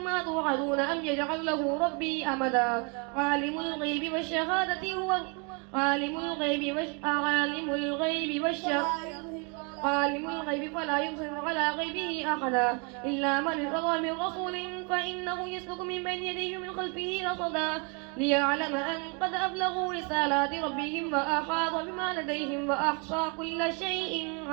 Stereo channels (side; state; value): left; quieter; 34.3 dB